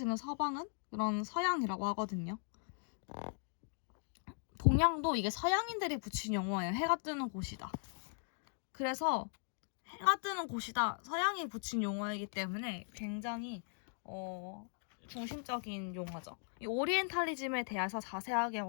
서방은 그런 서양이라고 하거든요. 동양도 이게 서양인들이 붙인 용어예요. 해가 뜨는 곳이다. 그래서 해가 뜨는 곳이다. 서양이 붙인 용어이기 때문에 굉장히 중심적인 용어죠. 이 오리엔탈리즘에 대해서 자세하게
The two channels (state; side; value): silent; right; 52 dB below the other